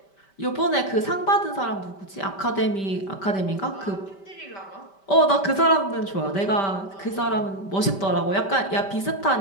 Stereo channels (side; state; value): right; late; 5.1 ms